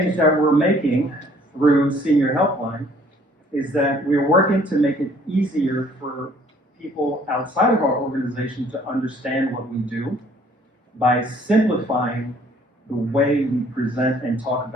that we're making through Senior Helpline is that we're working to make it easier for people outside of our organization to understand what we do by simplifying the way we present and talk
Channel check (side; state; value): both; normal; correlation 0.59